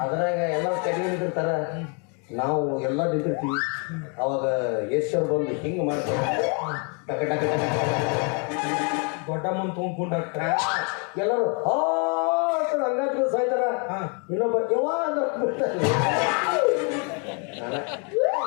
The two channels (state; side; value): quieter; right; 36.8 dB